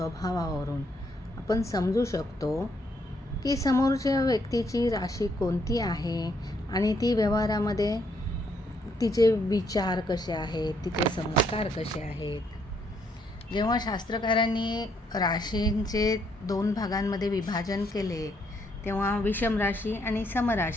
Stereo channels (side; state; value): both; normal; correlation 0.72